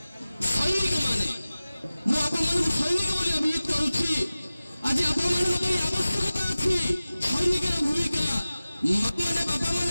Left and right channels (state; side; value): inverted; both; correlation -0.97